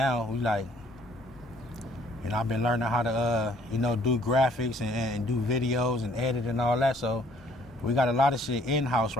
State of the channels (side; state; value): both; normal; correlation 0.62